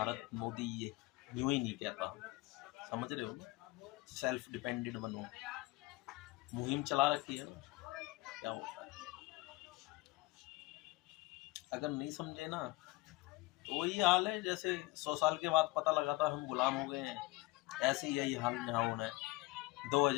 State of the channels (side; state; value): right; quieter; 20.9 dB